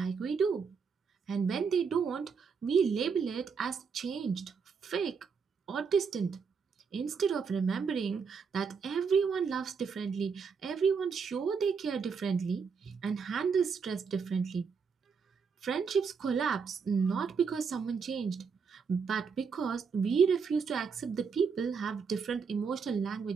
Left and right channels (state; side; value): quieter; left; 5.7 dB